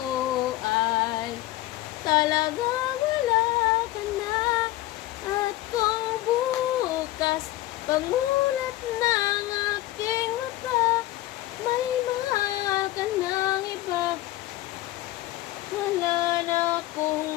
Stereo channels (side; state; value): right; quieter; 16.7 dB